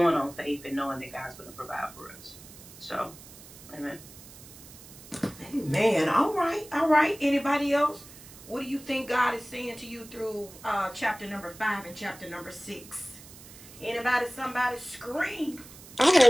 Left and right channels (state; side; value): noise; right; hiss, 18 dB below the sound